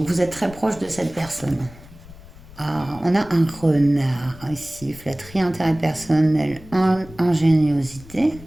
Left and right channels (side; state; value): left; noise; rumble, 19 dB below the sound